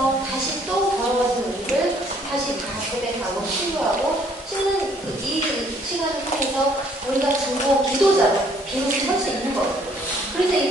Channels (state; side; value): normal; both; correlation 0.63